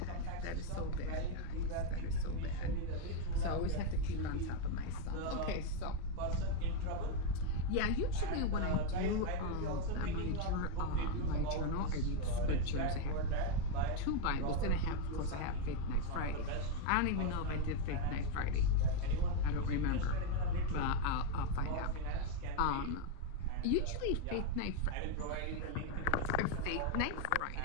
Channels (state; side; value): different; both; correlation 0.01